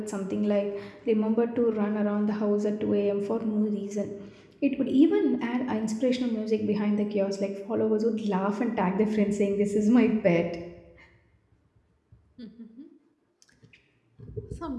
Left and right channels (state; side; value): identical; both; correlation 1.00